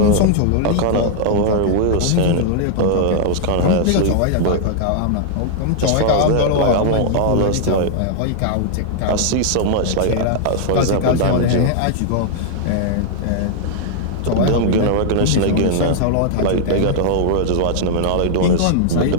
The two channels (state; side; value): different; both; correlation -0.01